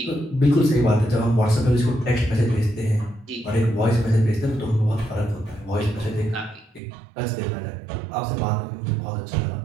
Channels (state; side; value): drops out; left; at 6.8 s